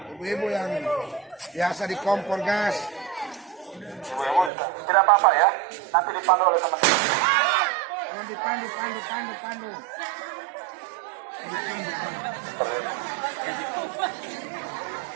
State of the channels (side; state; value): left; drops out; at 4.5 s